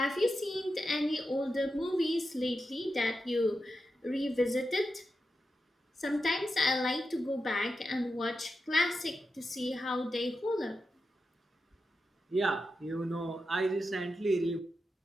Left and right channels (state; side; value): normal; both; correlation 0.89